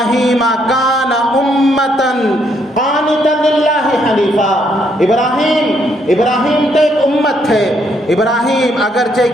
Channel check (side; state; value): both; normal; correlation 0.72